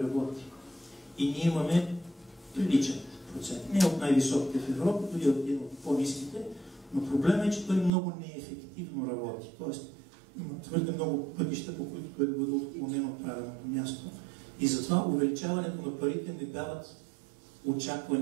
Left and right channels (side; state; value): left; drops out; at 7.9 s